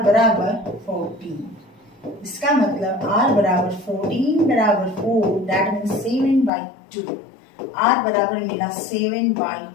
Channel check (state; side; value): drops out; right; at 6.5 s